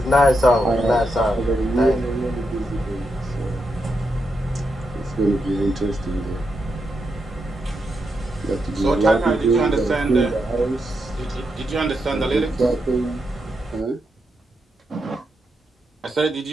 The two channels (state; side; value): normal; both; correlation 0.84